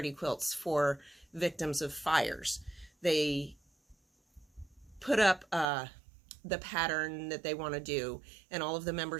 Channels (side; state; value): left; drops out; at 5.7 s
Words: quilts for victims of fires. They put up the pattern that they want to do, and all of the